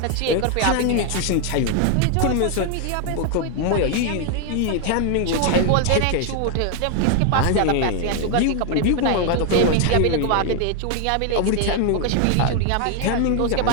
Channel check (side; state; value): both; different; correlation 0.00